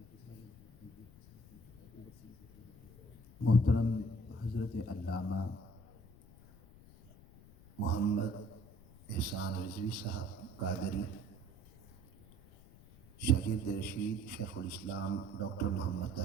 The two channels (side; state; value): left; noise; rumble, 22 dB below the sound